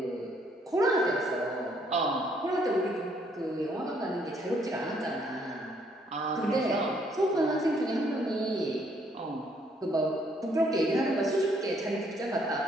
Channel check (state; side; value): normal; both; correlation 0.68